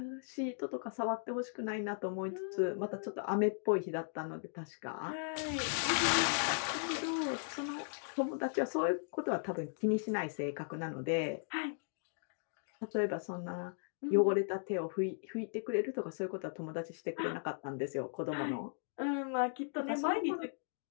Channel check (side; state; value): right; silent; digital silence